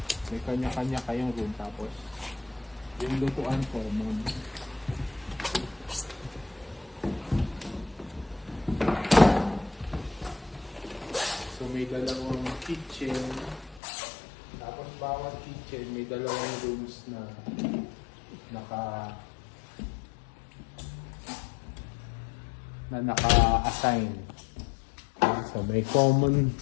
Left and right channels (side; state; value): right; drops out; at 13.8 s